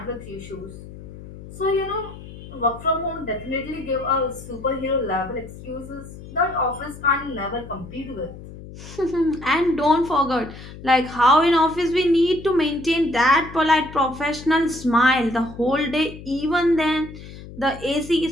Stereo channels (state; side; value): noise; left; hum, 15 dB below the sound